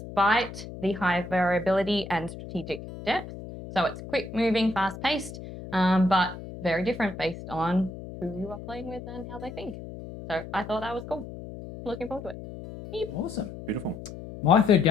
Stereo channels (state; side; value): noise; left; hum, 12 dB below the sound